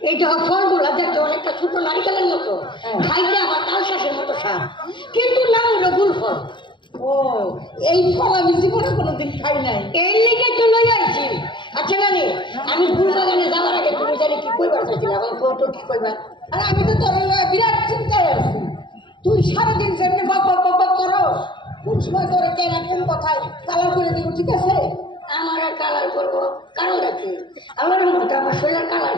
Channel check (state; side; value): late; right; 0.23 ms